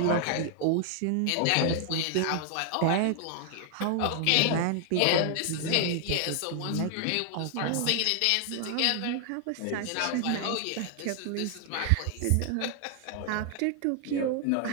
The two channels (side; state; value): both; different; correlation 0.00